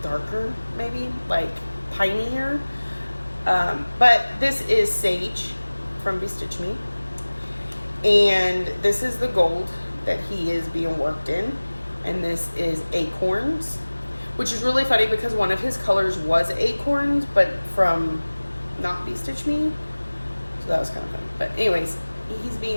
darker, maybe, like pinier. But this is Sage from Be Stitch Me. And this is the gold that he is being worked in. And this is Acorns, which is really funny because one of his colors was Acorns, but from not Be Stitch Me. So that was kind of funny. But anyways,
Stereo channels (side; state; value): both; inverted; correlation -1.00